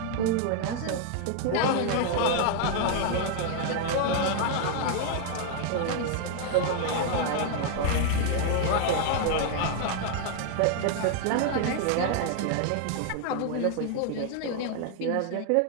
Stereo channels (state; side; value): different; both; correlation 0.00